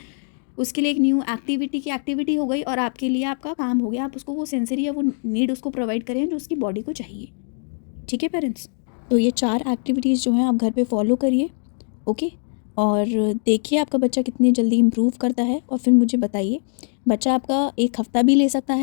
उसके लिए एक न्यू एक्टिविटी हो गई, और आपके लिए आपका काम हो गया, आप उसको वो सेंसरी या वो नीड उसको प्रोवाइड करें जो उसकी बॉडी को चाहिए, ठीक है पेरेंट्स। तो ये 4 एक्टिविटीज़ जो हैं आप घर पे फॉलो करिए, ओके। और देखिए आपका बच्चा कितनी जल्दी इम्प्रूव करता है, और फिर मुझे बताइए। बच्चा आपका 1 हफ़्ता भी ले सकता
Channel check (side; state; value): right; silent; 64 dB below the other